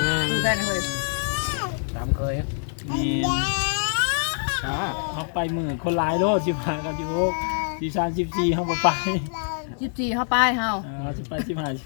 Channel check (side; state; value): right; silent; digital silence